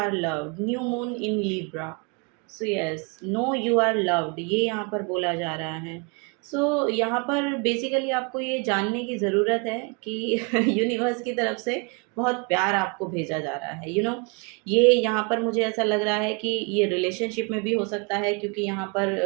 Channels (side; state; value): left; quieter; 32.1 dB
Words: loved, new moon in Libra. So yes, know you are loved, ये यहाँ पर बोला जा रहा है। सो यहाँ पर बेसिकली आपको ये जानने की ज़रूरत है कि यूनिवर्स की तरफ से बहुत प्यार आपको भेजा जा रहा है। ये यहाँ पर मुझे ऐसा लग रहा है कि ये रिलेशनशिप में भी हो सकता है, क्योंकि यहाँ